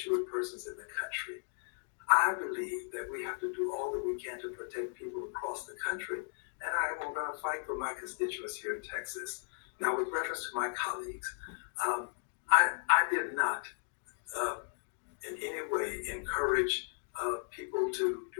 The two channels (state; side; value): silent; right; digital silence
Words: persons in the country. I believe that we have to do all that we can to protect people across the country, and I am going to fight for my constituents here in Texas. Now, with reference to my colleagues, I did not in any way encourage people to